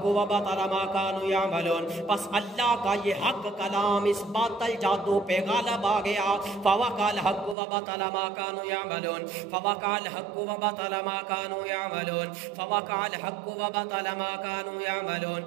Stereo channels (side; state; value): left; drops out; at 7.6 s